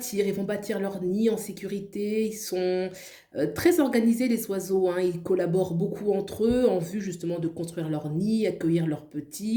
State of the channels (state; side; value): identical; both; correlation 1.00